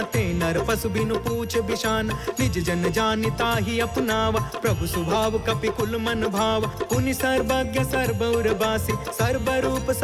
ते नर पशु बिनु पूछ बिशान निज जन जानिता ही अपनावा प्रभु स्वभाव कपि कुल मन भाव पुनि सर्वज्ञ सर्वौर बासी सर्वरूप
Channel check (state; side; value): identical; both; correlation 1.00